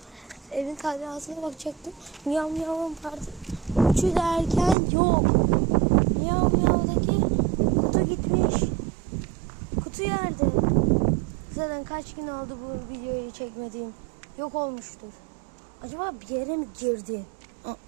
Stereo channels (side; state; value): left; drops out; at 4.8 s